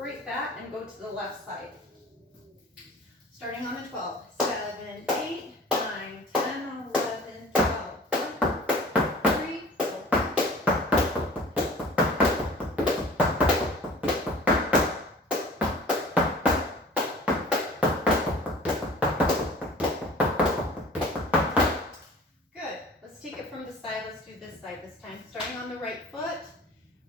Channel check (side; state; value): both; normal; correlation 0.45